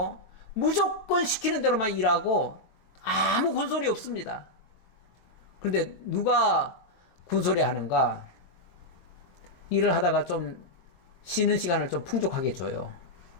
무조건 시키는 대로만 일하고 아무 군소리 없습니다. 그런데 누가 군소리 하는가? 일을 하다가 좀 쉬는 시간을 좀 풍족하게 줘요.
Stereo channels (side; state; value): right; late; 22 ms